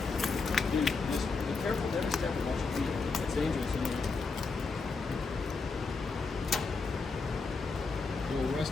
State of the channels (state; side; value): quieter; right; 4.3 dB